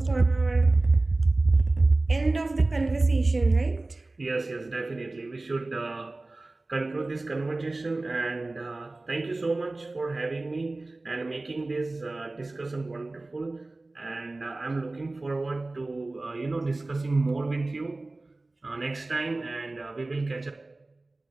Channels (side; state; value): left; quieter; 3.1 dB